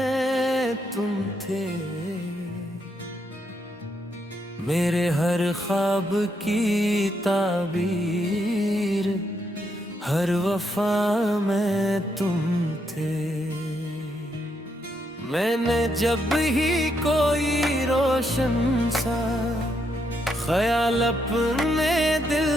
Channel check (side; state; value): both; normal; correlation 0.78